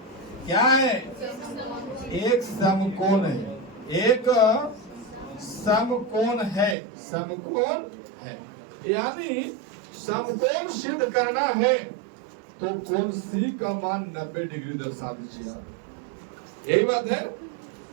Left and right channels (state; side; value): drops out; left; at 6.8 s